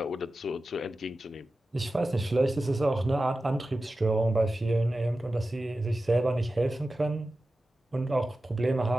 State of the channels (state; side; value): normal; both; correlation 0.94